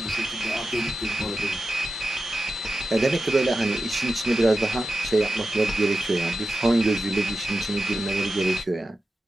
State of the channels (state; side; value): normal; both; correlation 0.92